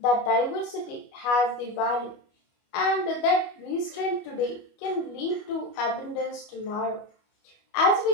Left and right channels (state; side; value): late; right; 25 ms